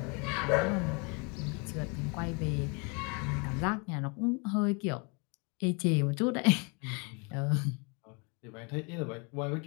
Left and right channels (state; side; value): quieter; right; 32.5 dB